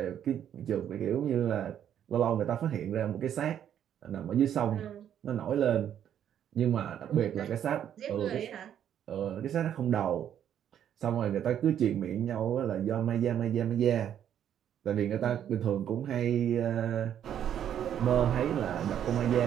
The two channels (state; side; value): quieter; left; 9.8 dB